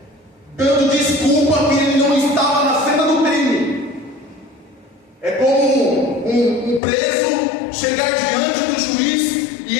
dando desculpa que ele não estava na cena do crime. É como um preso chegar diante do juiz e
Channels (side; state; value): right; drops out; at 6.8 s